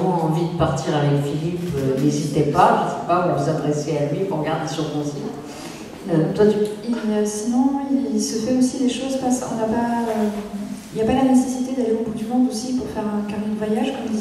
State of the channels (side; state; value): both; identical; correlation 1.00